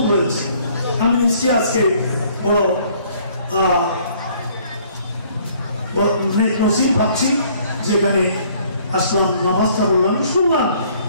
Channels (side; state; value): both; inverted; correlation -0.60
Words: হয়েছে, আমি নিশ্চয়ই আজকে বড় নসিব ভাবছি, যেখানে আসলাম, নামাজটা বললাম, শুনলাম